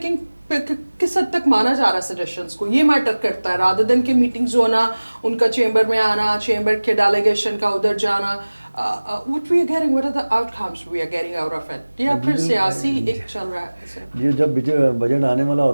کس حد تک مانا جا رہا ہے سجیشنز کو, یہ میٹر کرتا ہے رادر دین کہ میٹنگز ہونا, ان کا چیمبر میں آنا, چیمبر کے ڈیلیگیشن کا ادھر جانا. What we are getting, what are the outcomes we are getting out of it? یا پھر سیاسی ایک چل رہا ہے. یہ جب بجٹ آنے والا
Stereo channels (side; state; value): both; inverted; correlation -1.00